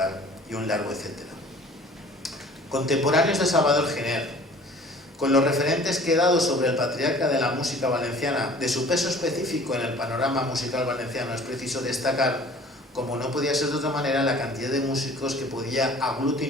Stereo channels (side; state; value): both; normal; correlation 0.48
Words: y un largo etcétera. Contemporáneos de Salvador Giner. Con los referentes que he dado sobre el patriarca de la música valenciana, de su peso específico en el panorama musical valenciano, es preciso destacar, como no podía ser de otra manera, la cantidad de músicos que podía